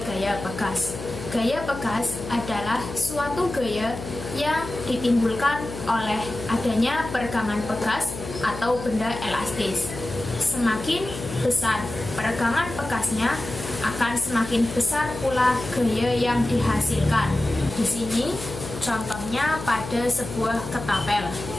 gaya pegas. Gaya pegas adalah suatu gaya yang ditimbulkan oleh adanya peregangan pegas atau benda elastis. Semakin besar peregangan pegasnya, akan semakin besar pula gaya yang dihasilkan. Di sini contohnya pada sebuah ketapel.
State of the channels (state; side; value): noise; left; hum, 10 dB below the sound